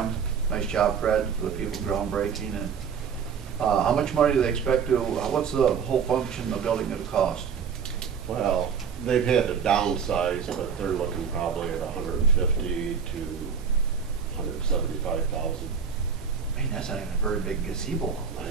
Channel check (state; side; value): quieter; left; 6.6 dB